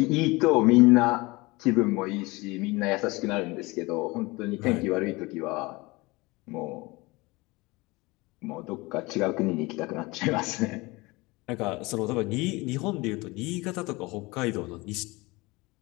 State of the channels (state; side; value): quieter; right; 23.3 dB